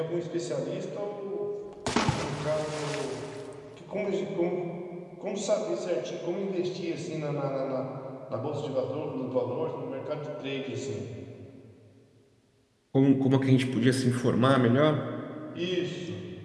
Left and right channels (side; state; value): both; identical; correlation 1.00